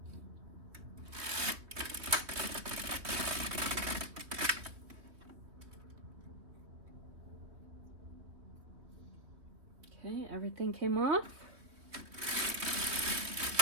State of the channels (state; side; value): late; left; 3.0 ms